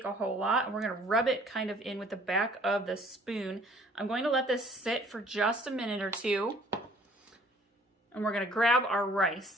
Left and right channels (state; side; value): normal; both; correlation 0.56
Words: a whole lot. And we're gonna rub it kind of in with the back of the spoon. I'm going to let this sit for just a minute or 2. And we're gonna grab our